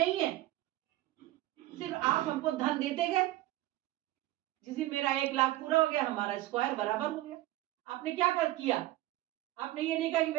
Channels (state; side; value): quieter; left; 16.3 dB